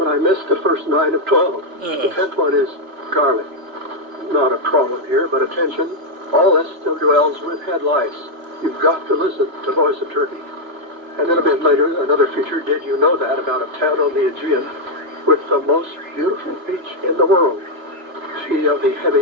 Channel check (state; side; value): late; left; 3.1 ms